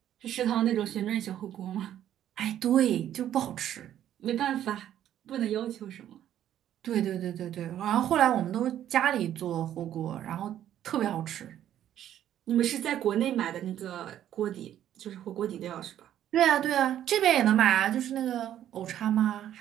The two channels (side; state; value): left; quieter; 11.2 dB